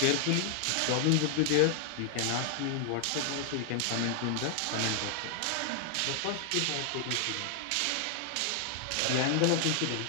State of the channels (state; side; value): different; both; correlation 0.00